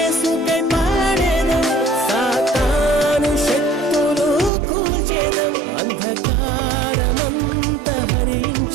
పాడెదం, సాతాను శక్తులు కూల్చెదం. అంధకారమంత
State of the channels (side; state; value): left; drops out; at 4.5 s